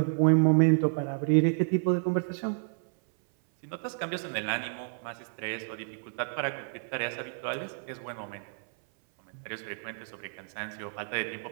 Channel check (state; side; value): silent; left; 58 dB below the other